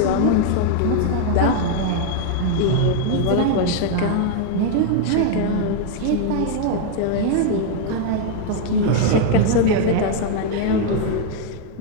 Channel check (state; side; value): different; both; correlation 0.00